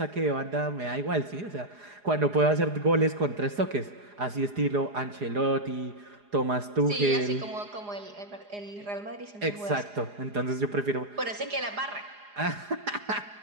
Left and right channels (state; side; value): late; left; 4.9 ms